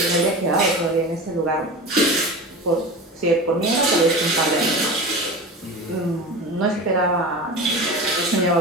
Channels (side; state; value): both; normal; correlation 0.30